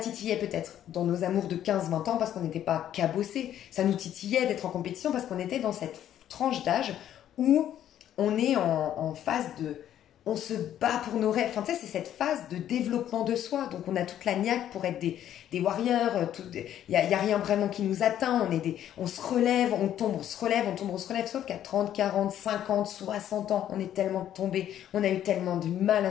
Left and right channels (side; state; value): right; quieter; 11.0 dB